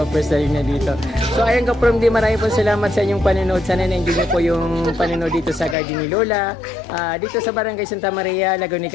style na dito. So, ayun kapromdi, maraming po salamat sa inyong panonood. Sana na-enjoy niyo po yung panonood dito sa garden ni Lola. Dito sa Barangay Santa Maria, Laguna,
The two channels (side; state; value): right; drops out; at 5.8 s